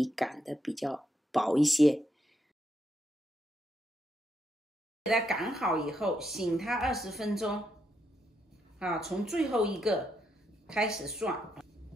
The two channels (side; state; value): both; normal; correlation 0.79